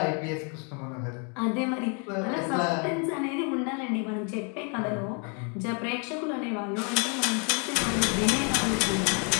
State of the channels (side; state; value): right; quieter; 37.0 dB